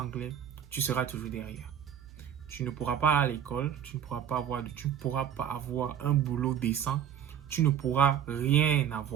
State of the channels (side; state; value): left; quieter; 9.3 dB